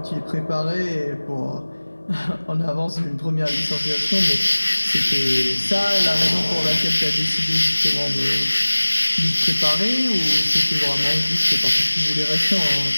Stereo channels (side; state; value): both; inverted; correlation -1.00